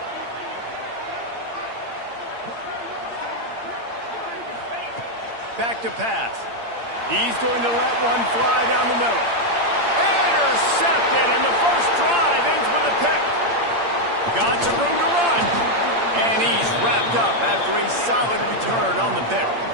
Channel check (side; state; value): left; late; 8.7 ms